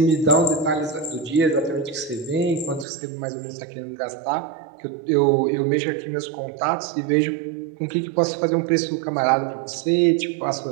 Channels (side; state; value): left; drops out; at 2.9 s